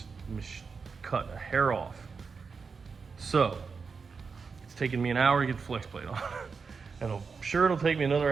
cut a hair off. So it's taken me an hour to get the flex plate on. And I'm sure it'll take me another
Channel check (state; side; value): quieter; left; 5.2 dB